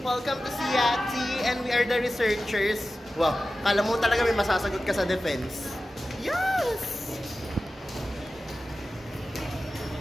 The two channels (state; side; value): normal; both; correlation 0.94